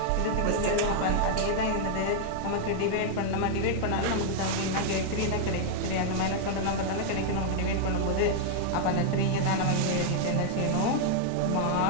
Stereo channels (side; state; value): both; different; correlation -0.01